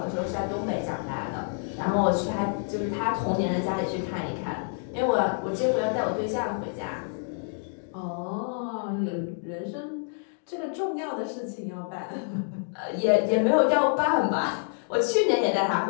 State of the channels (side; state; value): right; silent; 60 dB below the other